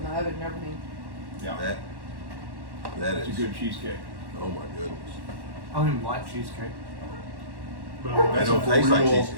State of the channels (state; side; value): late; left; 1.1 ms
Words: the oven and everything. Yeah. That That's a is good cheesecake. Oh my goodness. I don't even like cheesecake. But It That's don't a taste like real- cheese.